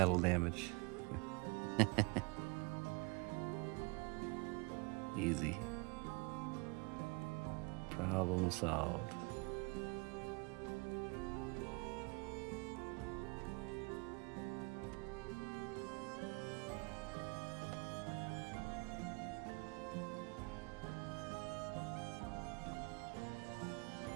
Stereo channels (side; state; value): left; quieter; 29.7 dB